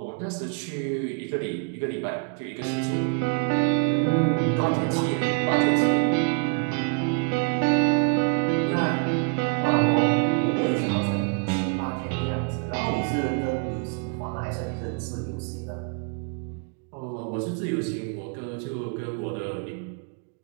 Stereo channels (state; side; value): quieter; left; 37.0 dB